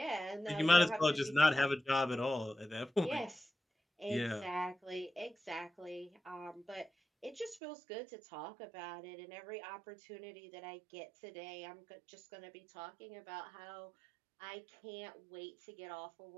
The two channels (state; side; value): drops out; left; at 7.6 s